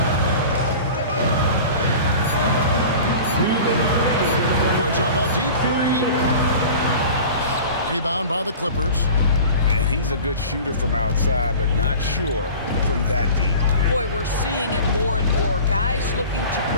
Puts up a deep three. Rebound by the Clippers. And he's a good shooter from outside, but not sure from that deep. Boy, we're seeing it more and more. Guys looking to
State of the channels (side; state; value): both; inverted; correlation -0.39